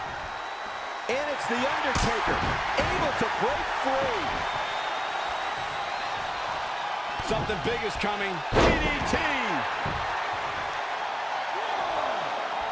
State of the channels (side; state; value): both; identical; correlation 1.00